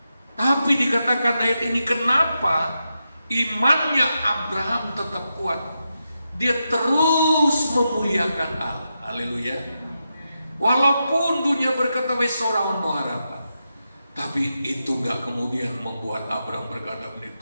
Tapi dikatakan ayat ini, kenapa imannya Abraham tetap kuat? Dia terus memuliakan Allah. Haleluya. Walaupun dunia berkata wes sorawan no harapan, tapi itu gak kemudian membuat Abraham berkata,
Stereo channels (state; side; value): inverted; both; correlation -0.87